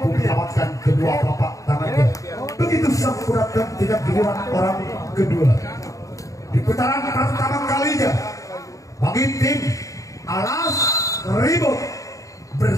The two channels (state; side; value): late; right; 0.16 ms